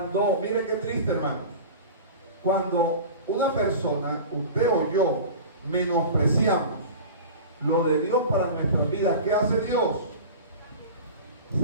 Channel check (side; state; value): both; inverted; correlation -0.34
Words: Mire qué triste, hermano. Cuando una persona, usted o yo, menospreciamos lo de Dios para nuestras vidas, ¿qué hace Dios?